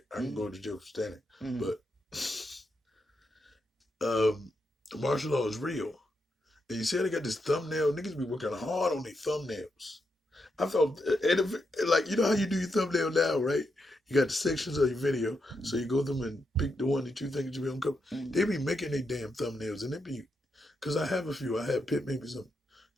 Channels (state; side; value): normal; both; correlation 0.83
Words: I can go to jail for standing. But martial law is real. And you see how they got this thumbnail? Niggas be working hard on their thumbnails. I felt, like, you know how you do your thumbnail now, right? You got the sections of your video, so you go through them and pick the one that you think you be on cover. They be making their damn thumbnails, and it be, because I have a few. I have Pitt, maybe some.